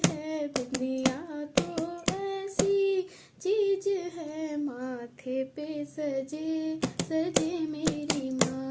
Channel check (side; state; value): both; identical; correlation 1.00